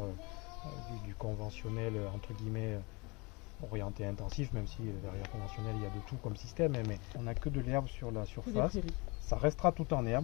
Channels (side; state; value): right; quieter; 27.7 dB